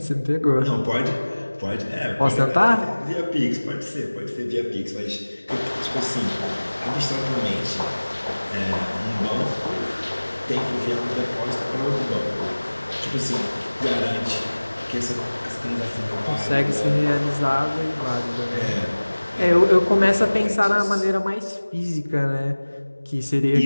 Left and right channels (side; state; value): both; inverted; correlation -1.00